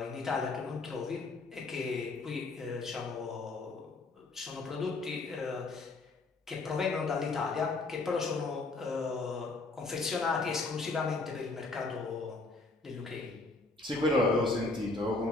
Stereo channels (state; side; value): quieter; right; 3.4 dB